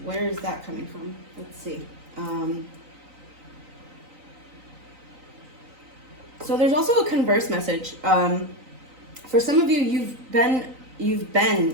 Where is that coming from? Let's see. So there's also a converse message. For some of you, you've done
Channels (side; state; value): left; late; 3.9 ms